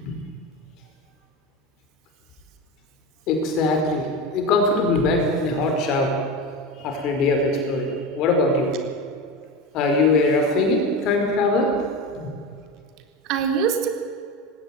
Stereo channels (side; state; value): both; normal; correlation 0.22